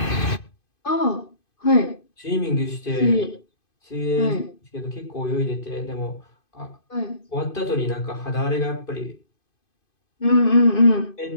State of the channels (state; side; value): late; right; 2.5 ms